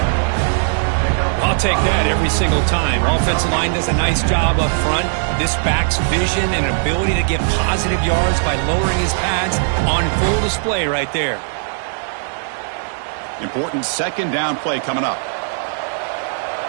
I'll take that every single time. Offensive line does a nice job up front. This back's vision and ability to get positive yards by lowering his pads on full display right there. Important 2nd down play coming up.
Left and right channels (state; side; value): silent; left; digital silence